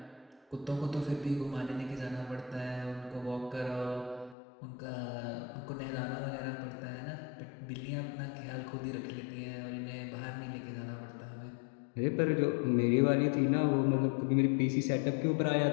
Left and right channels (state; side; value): drops out; right; at 4.4 s